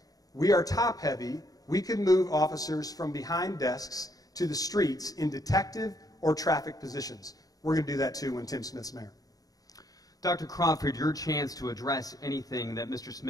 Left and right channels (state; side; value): late; right; 0.18 ms